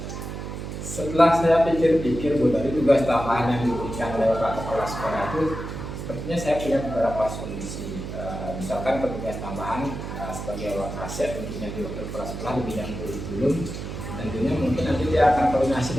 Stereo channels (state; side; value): noise; right; hum, 7 dB below the sound